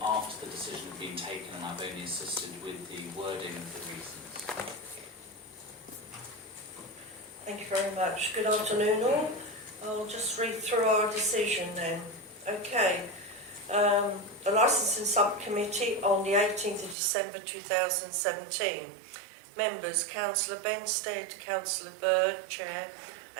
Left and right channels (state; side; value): drops out; left; at 16.9 s